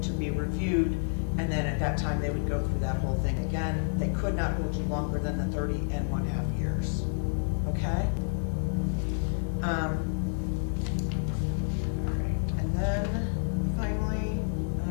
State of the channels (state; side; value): silent; right; digital silence